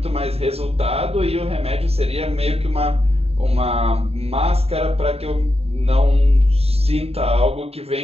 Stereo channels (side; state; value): left; late; 0.29 ms